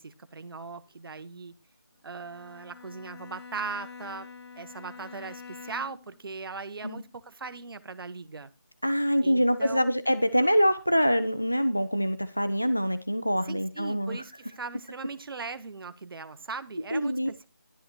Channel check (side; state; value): both; inverted; correlation -0.91